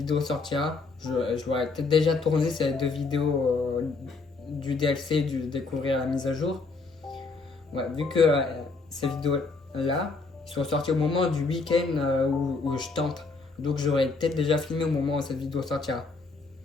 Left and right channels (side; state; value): right; quieter; 4.0 dB